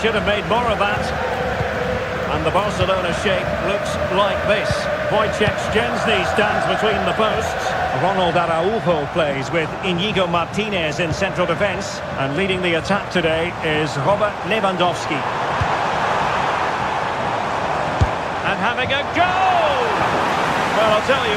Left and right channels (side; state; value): both; identical; correlation 1.00